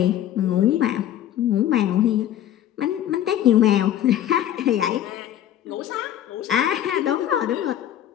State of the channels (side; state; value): right; quieter; 11.5 dB